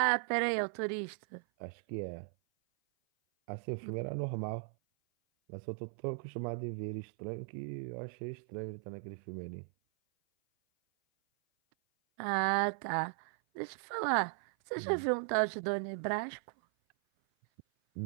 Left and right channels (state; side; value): silent; left; 53 dB below the other